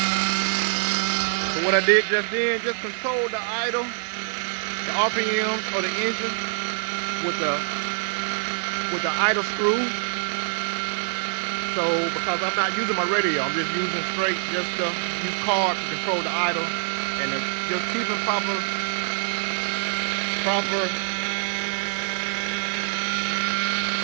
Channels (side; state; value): left; silent; digital silence